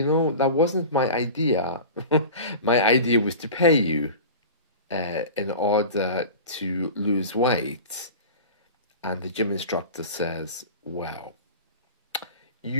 that wasn't my idea. My idea was to pay you in order to lose weight. And the gym instructor says, well,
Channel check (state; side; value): inverted; both; correlation -0.35